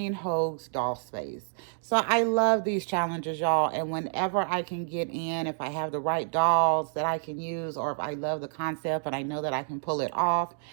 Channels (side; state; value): left; silent; digital silence